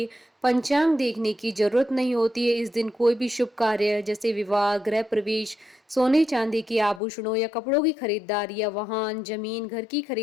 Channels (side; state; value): right; drops out; at 7.0 s